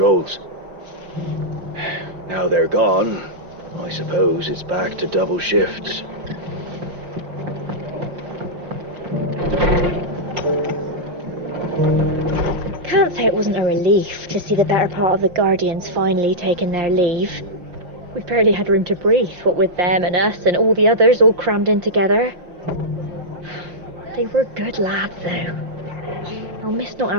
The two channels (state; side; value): late; left; 5.7 ms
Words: Now they're gone, I suppose it's back to double shifts. Can't say it wasn't a relief to see the better part of the Guardians finally taking their leave. We barely had room to breathe, what with them and us and all the others all crammed in together. They were good lads, though. I'll miss not